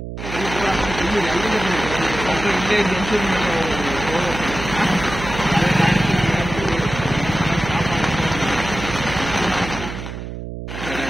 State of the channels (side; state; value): right; noise; hum, 8 dB below the sound